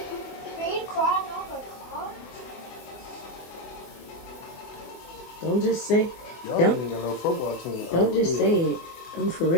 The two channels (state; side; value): late; right; 24 ms